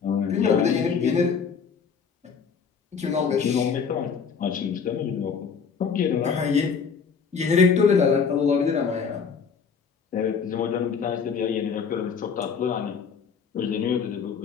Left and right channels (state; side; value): quieter; right; 6.1 dB